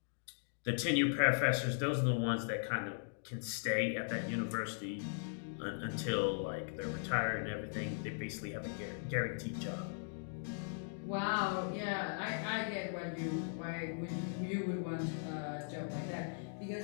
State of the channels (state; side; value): silent; right; digital silence